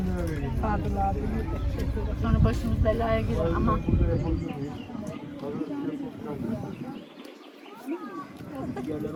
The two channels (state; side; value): identical; both; correlation 1.00